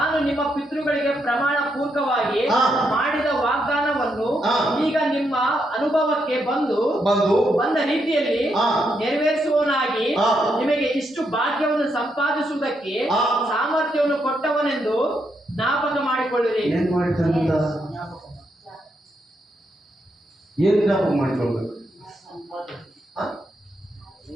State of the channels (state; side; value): normal; both; correlation 0.79